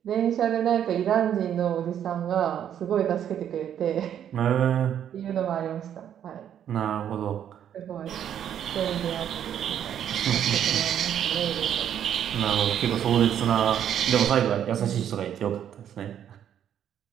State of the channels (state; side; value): quieter; left; 9.7 dB